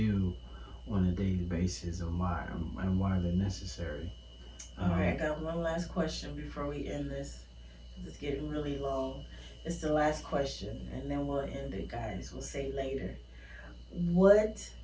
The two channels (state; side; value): identical; both; correlation 1.00